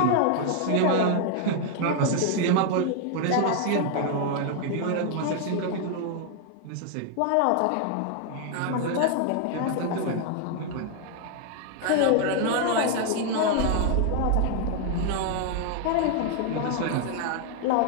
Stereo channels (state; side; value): different; both; correlation 0.00